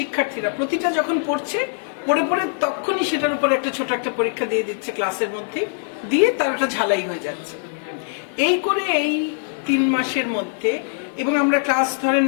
প্রতিটা যখন পড়ে পড়ে তখনই সেটার উপর একটা ছোট একটা পরীক্ষা দিয়ে দিচ্ছে ক্লাসের মধ্যে, দিয়ে তার একটা ঝালাই হয়ে যাচ্ছে। এই করে এই 3 মাসের মধ্যে, এবং আমরা ক্লাস ধরেন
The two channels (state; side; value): silent; right; digital silence